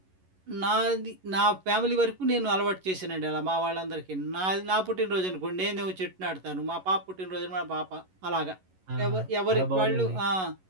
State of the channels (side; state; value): left; late; 11 ms